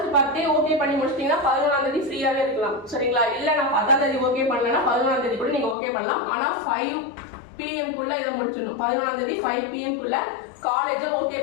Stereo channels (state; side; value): drops out; right; at 5.8 s